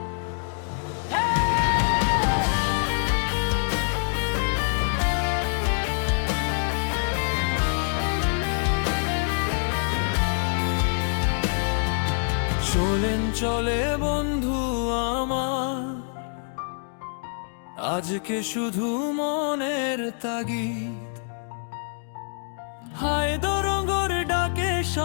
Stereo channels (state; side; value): silent; right; digital silence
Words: চলেন চলে বন্ধু আমার, আজকে শুধু মনের তাগিদ। হায় দরঙ্গর ডাকে